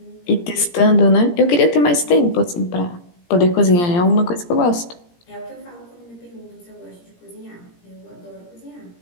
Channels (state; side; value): late; right; 17 ms